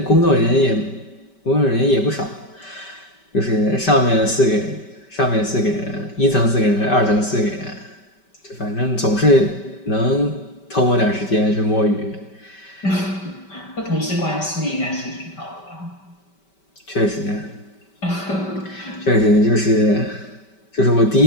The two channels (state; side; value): late; right; 5.2 ms